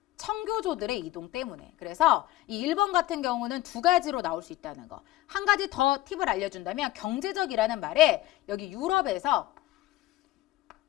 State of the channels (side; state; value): right; quieter; 16.3 dB